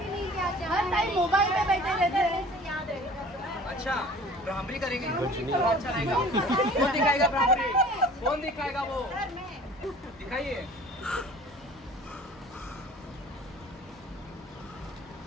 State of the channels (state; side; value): normal; both; correlation 0.47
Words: नहीं क्या हर टाइम मोबाइल पे बैठे रहते हैं। याद रहेगा। अच्छा, ब्राह्मणी करेंगे, तो अच्छा रहेगा। कौन दिखाएगा ब्राह्मणी? कौन दिखाएगा वो? दिखाइए।